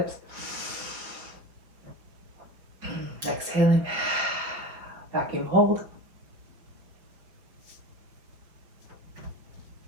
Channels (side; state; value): left; late; 5.5 ms